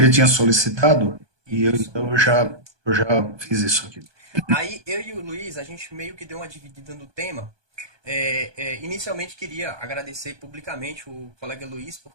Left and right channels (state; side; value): late; left; 1.2 ms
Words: tinha solicitado Isso. então eu já fiz isso aqui. Aí eu e o Luiz, a gente meio que deu uma dividida no tema. Inicialmente queria agradecer publicamente o colega Luiz,